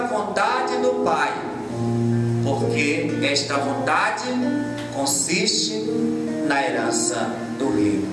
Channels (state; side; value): identical; both; correlation 1.00